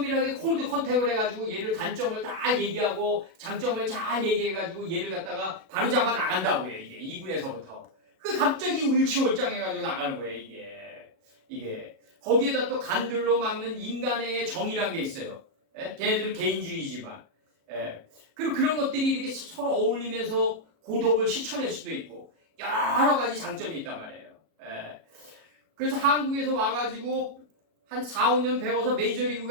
콜드 컨택을 해가지고 얘를 단점을 다 얘기하고 장점을 잘 얘기해가지고 얘를 갖다가 바로잡아 나간다고요. 이게 2군에서부터. 그 갑자기 일치월장해가지고 나가는 거예요. 이게 거기에다 또 간들로 막는 인간의 정의란 게 있어요. 예? 걔네들은 개인주의지만. 예. 그리고 그런 것들이 이렇게 서로 어울리면서 고독을 실천할 수도 있고 여러 가지 장점이 있단 말이에요. 예. 그래서 한국에서 와가지고 한 4, 5년 배워서 메이저리그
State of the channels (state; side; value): late; left; 37 ms